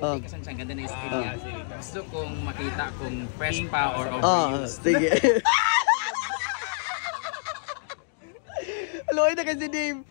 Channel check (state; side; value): silent; right; digital silence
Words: kasi siyang ganda na yung skin niya. Gusto kong makita kung fresh pa or overused. Sige. Aloy na kasi Dave.